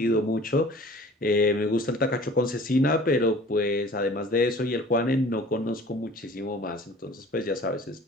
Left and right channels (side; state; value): both; normal; correlation 0.47